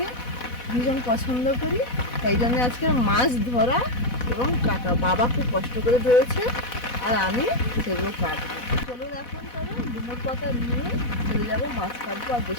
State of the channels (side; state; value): right; late; 4.1 ms